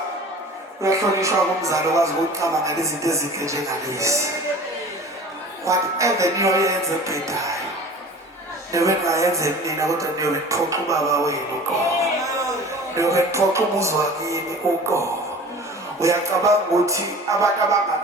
uyahlonishwa kumzali okwazi ukucabanga ngezinto ezinhle njengalezi. Whatever niyoyenza ebhedayo niyobe ningayenza eminina, kodwa niyobe niphoxa ubaba wenu uqobo, niyobe niphoxa umuzi wakini uqobo. Uyacabanga ukuthi abantu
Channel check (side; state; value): both; normal; correlation 0.41